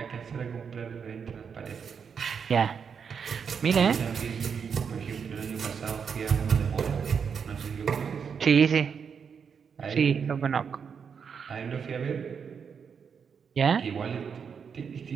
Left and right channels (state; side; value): quieter; left; 6.6 dB